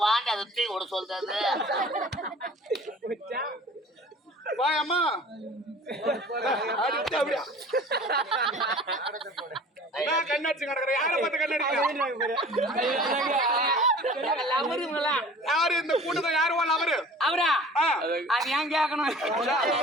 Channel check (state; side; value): normal; both; correlation 0.45